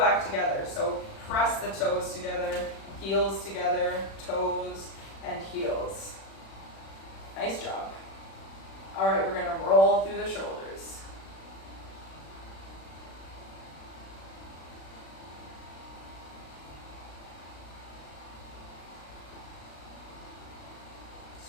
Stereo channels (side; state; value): right; late; 36 ms